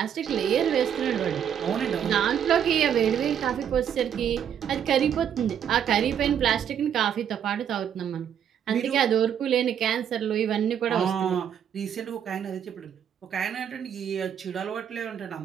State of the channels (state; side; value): quieter; left; 8.9 dB